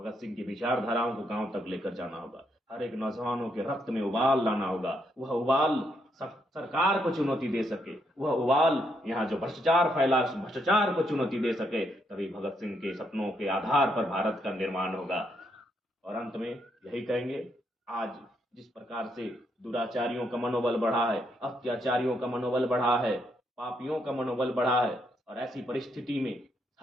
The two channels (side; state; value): both; normal; correlation 0.76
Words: सिंह की विचारधाराओं को गांव तक लेकर जाना होगा। हर एक नौजवानों के रक्त में उबाल लाना होगा। वह उबाल सरकार को चुनौती दे सके, वह उबाल यहाँ जो भ्रष्टाचार फैला भ्रष्टाचार को चुनौती दे सके, तभी भगत सिंह के सपनों के आधार पर भारत का निर्माण होगा। और अंत में यही कहेंगे, आज जिस प्रकार से दुराचारियों का मनोबल बढ़ा है, अत्याचारियों का मनोबल बढ़ा है, पापियों का मनोबल बढ़ा है, और ऐसी परिस्थिति में